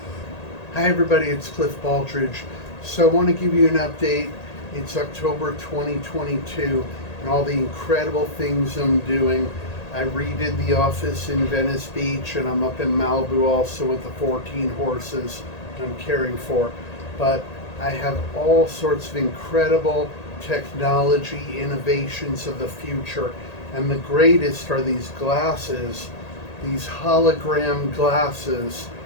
Hi everybody, it's Cliff Baldridge. So I want to give you an update. It's October 2022 and all the incredible things I'm doing. I redid the office in Venice Beach, and I'm up in Malibu also with the 14 horses I'm caring for. But I have all sorts of incredible technology innovations of the future. And the greatest are these glasses, these hologram glasses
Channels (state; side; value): late; right; 1.8 ms